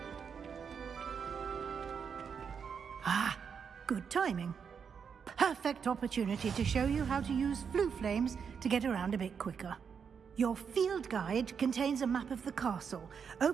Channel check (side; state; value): left; quieter; 6.6 dB